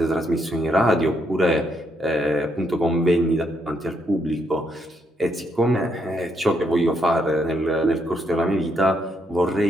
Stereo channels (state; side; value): normal; both; correlation 0.76